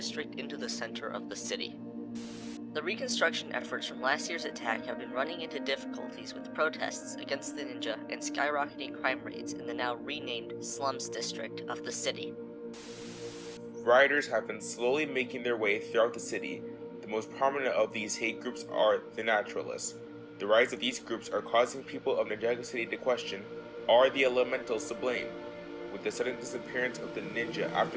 into the center of the city. The reconstruction efforts from last year's attack have been running into difficulties with protests against the ninja and skyrocketing crime rates in the now renamed Slums District of the city. Rioters have been slowly making their way throughout the city. The most prominent of these hate groups are the Naturalists. The rise of these groups are causing people of Ninjago City to question, are the elementals to blame? With the sudden disappearance of the ninja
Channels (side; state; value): both; identical; correlation 1.00